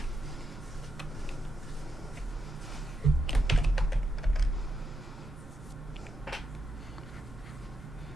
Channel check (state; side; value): normal; both; correlation 0.83